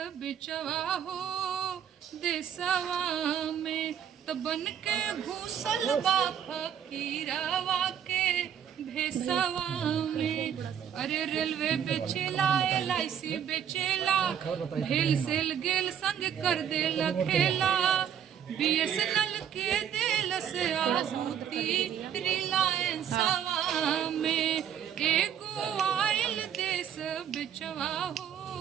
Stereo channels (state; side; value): quieter; left; 8.9 dB